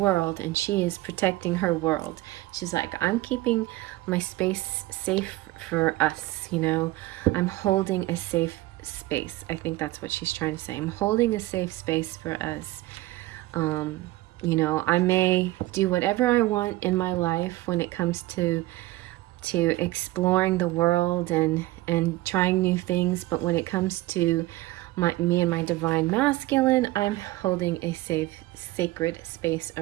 and she is protecting her world. She's like, I'm keeping my space safe for us, you know. I'm holding a safe space. I think that's what she's trying to say. I'm holding a safe space for us. You know, I may do whatever I want in my life when it comes to exploring the world and trying new things, but when it comes to me and my divine masculine, I'm holding a safe, sacred space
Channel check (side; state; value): left; quieter; 18.1 dB